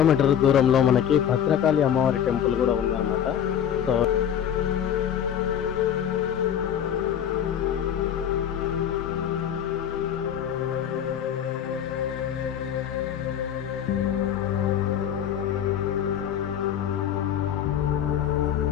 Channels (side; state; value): right; quieter; 9.4 dB